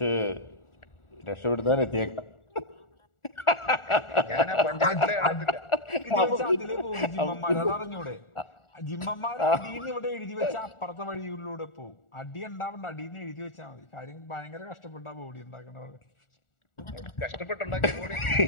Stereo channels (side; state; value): right; late; 1.4 ms